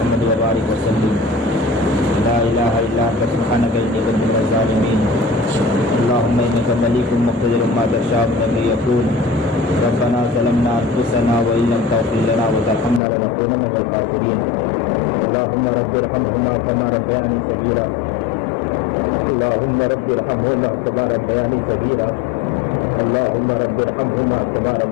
وبارک وسلم۔ لا الہ الا انت سبحانک انی کنت من الظالمین۔ اللہم انک ملیک مقتدر ما تشاء من یکون۔ ربنا ظلمنا انفسنا وان لم تغفر لنا وترحمنا لنکونن من الخاسرین۔ اللہم رب ارحمہما کما ربیانی صغیرا، اللہم رب ارحمہما کما ربیانی صغیرا، اللہم رب ارحمہما کما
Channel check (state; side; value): drops out; right; at 13.0 s